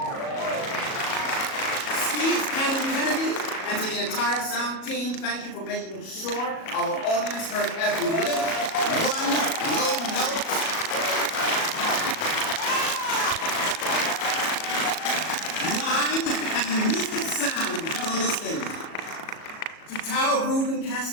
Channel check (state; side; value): late; right; 37 ms